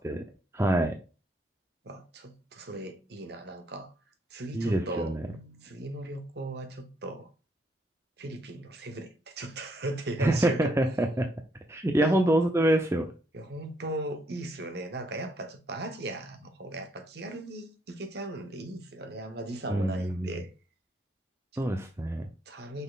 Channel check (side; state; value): both; normal; correlation 0.73